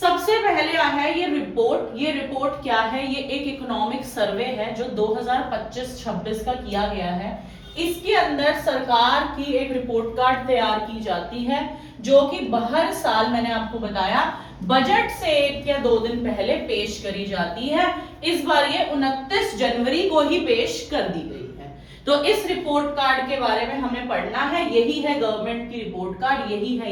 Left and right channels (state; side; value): identical; both; correlation 1.00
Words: पहले है ये रिपोर्ट। ये रिपोर्ट क्या है? ये एक इकोनॉमिक सर्वे है जो 2025-26 का किया गया है। इसके अंदर सरकार की एक रिपोर्ट कार्ड तैयार की जाती है, जो कि हर साल, मैंने आपको बताया, बजट से 1 या 2 दिन पहले पेश करी जाती है। इस बार ये 29 जनवरी को ही पेश कर दी गई है। तो इस रिपोर्ट कार्ड के बारे में हमें पढ़ना है। यही है गवर्नमेंट की रिपोर्ट कार्ड, यही